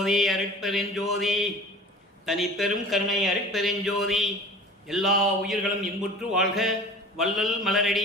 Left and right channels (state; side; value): normal; both; correlation 0.41